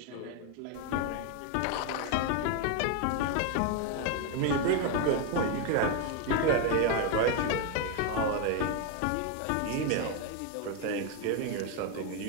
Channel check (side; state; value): both; different; correlation 0.01